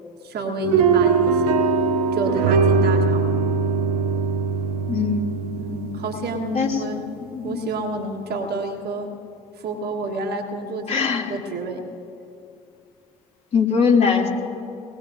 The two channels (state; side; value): normal; both; correlation 0.14